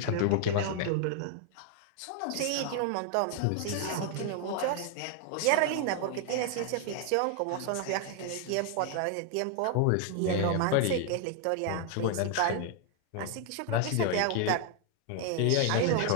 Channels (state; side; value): different; both; correlation 0.00